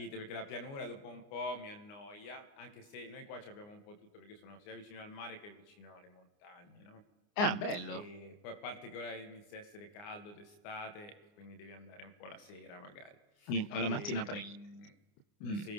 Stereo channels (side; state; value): right; late; 29 ms